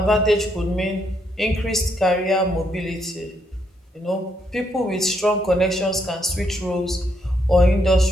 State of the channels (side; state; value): both; normal; correlation 0.75